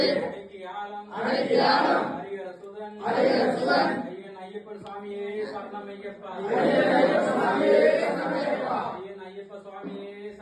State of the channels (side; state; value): both; identical; correlation 1.00